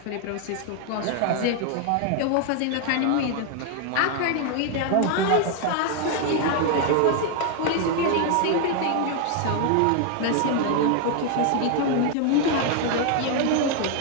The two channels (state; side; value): different; both; correlation 0.00